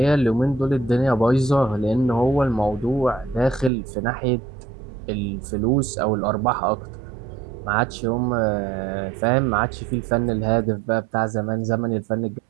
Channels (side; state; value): left; drops out; at 3.7 s